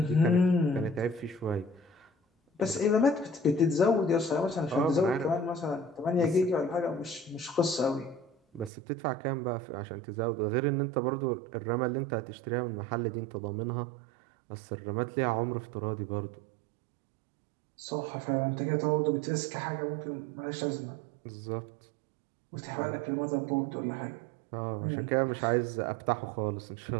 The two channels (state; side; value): drops out; left; at 8.7 s